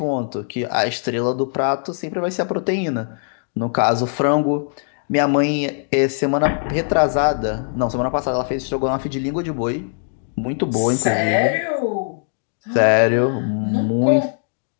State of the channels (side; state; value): right; silent; digital silence